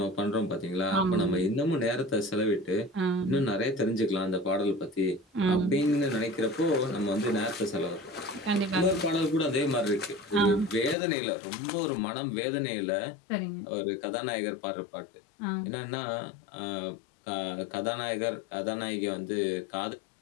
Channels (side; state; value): right; drops out; at 11.0 s